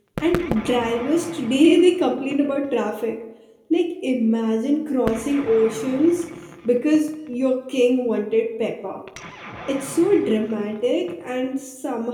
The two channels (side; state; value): both; identical; correlation 1.00